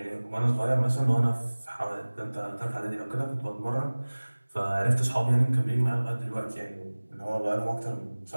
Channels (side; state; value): both; inverted; correlation -1.00